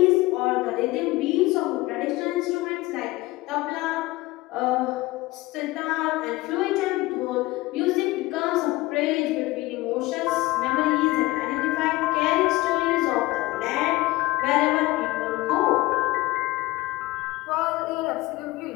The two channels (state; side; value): quieter; right; 19.8 dB